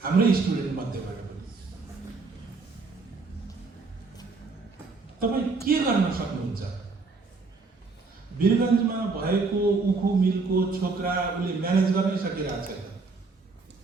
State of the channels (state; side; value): quieter; left; 4.1 dB